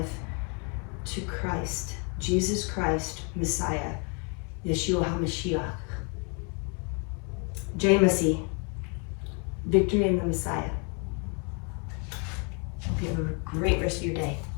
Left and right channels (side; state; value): right; quieter; 36.8 dB